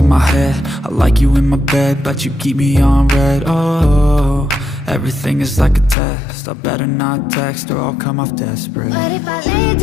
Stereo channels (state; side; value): drops out; right; at 6.0 s